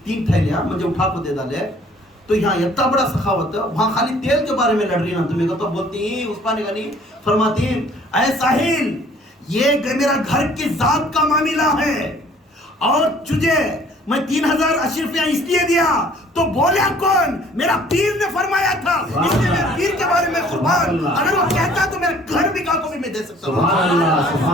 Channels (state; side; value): normal; both; correlation 0.56